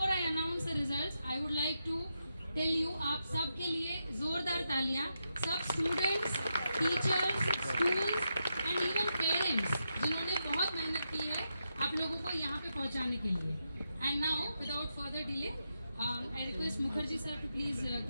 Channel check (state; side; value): inverted; both; correlation -0.85